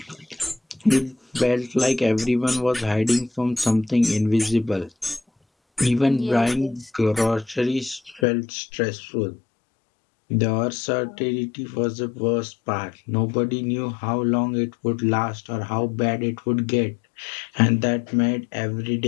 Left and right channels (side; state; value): right; drops out; at 8.2 s